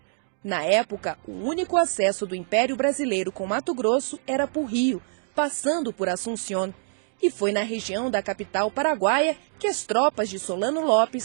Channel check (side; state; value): left; silent; digital silence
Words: Na época, o único acesso do Império Brasileiro com Mato Grosso era por rio, passando por Assunción. E foi na região da capital paraguaia que as tropas de Solano